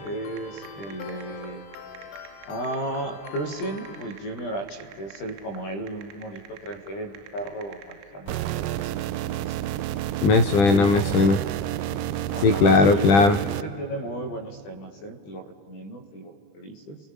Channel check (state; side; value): late; right; 20 ms